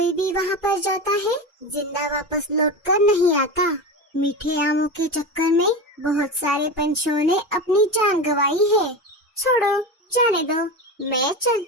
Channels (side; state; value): both; normal; correlation 0.23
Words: भी वहाँ पर जाता है, जिंदा वापस लौटकर नहीं आता। मीठे आमों के चक्कर में बहुत सारे पंछियों ने अपनी जान गंवाई है। छोड़ो, जाने दो, मैं